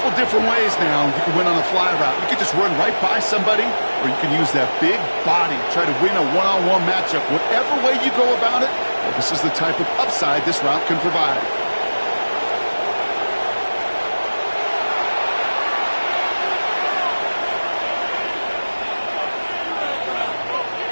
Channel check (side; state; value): both; inverted; correlation -1.00